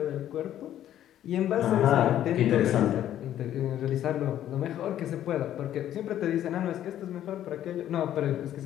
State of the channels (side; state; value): right; quieter; 11.6 dB